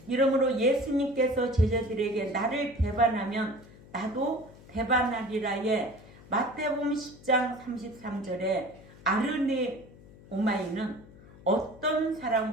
이러므로 예수님께서 제자들에게 나를 배반하면 나도 배반하리라에 마태복음 10장 33절에 아르네오마이는 어떤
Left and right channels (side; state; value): left; noise; hum, 21 dB below the sound